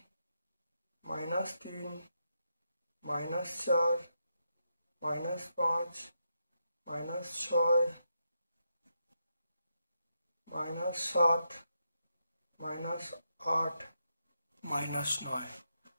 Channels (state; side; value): inverted; both; correlation -0.83